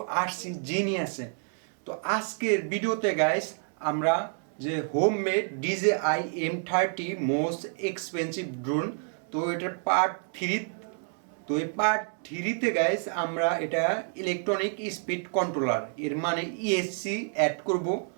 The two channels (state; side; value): silent; left; 57 dB below the other